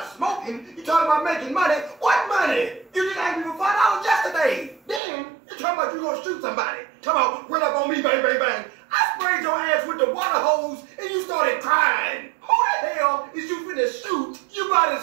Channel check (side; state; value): left; drops out; at 5.0 s